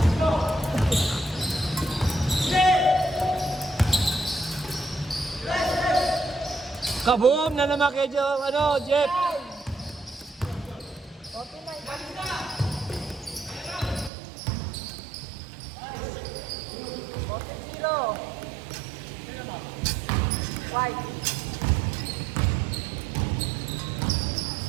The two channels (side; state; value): left; drops out; at 14.1 s